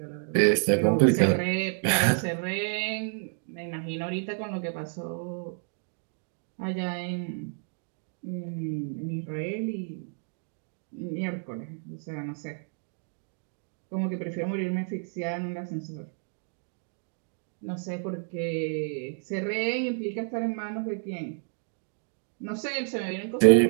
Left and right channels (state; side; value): silent; left; 58 dB below the other